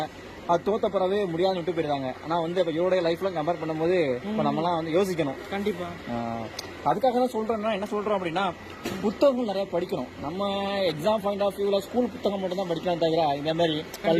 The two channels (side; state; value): both; identical; correlation 1.00